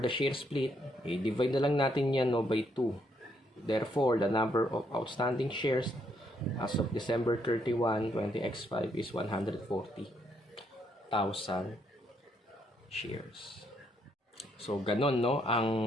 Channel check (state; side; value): normal; both; correlation 0.73